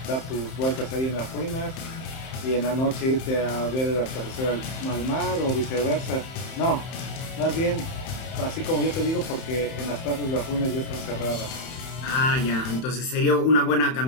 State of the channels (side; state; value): right; late; 31 ms